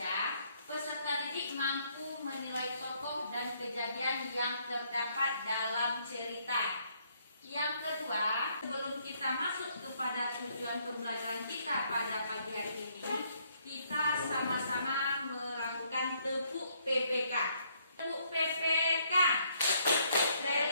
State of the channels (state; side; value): inverted; both; correlation -0.69